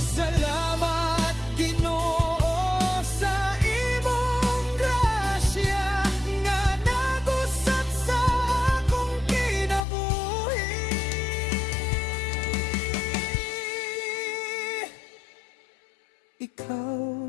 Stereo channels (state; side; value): drops out; right; at 9.8 s